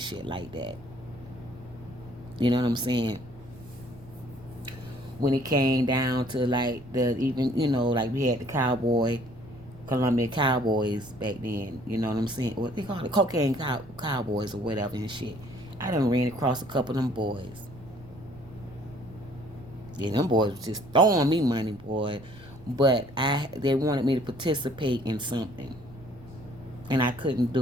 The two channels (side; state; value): right; noise; rumble, 20 dB below the sound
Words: like that. You know what I'm saying? When it came down to like the even like we had the Columbia Cowboys back then. You know what I'm saying? What they call it, cocaine cowboys or whatever and shit. I done ran across a couple of them boys. Yeah, them boys was just throwing me money, boy. But they wanted me to participate in something, and I couldn't